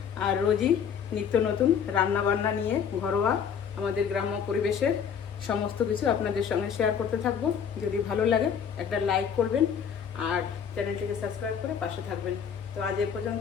আর রোজই নিত্য নতুন রান্না বান্না নিয়ে, ঘরোয়া আমাদের গ্রাম্য পরিবেশের সমস্ত কিছু আপনাদের সঙ্গে শেয়ার করতে থাকবো। যদি ভালো লাগে একটা লাইক করবেন আর চ্যানেলটিকে সাবস্ক্রাইব করে পাশে থাকবেন। তো আজ এ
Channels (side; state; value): right; quieter; 7.5 dB